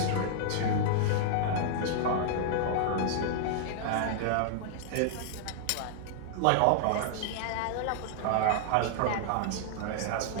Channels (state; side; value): different; both; correlation -0.01